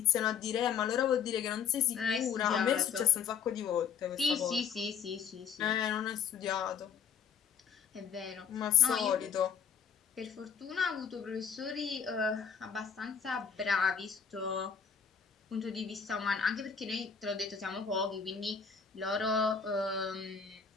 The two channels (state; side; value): quieter; right; 7.2 dB